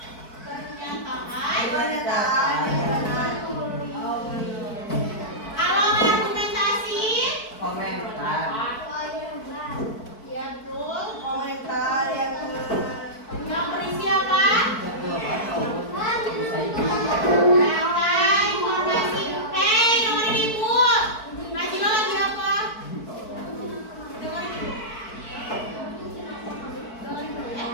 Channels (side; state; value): right; late; 4.5 ms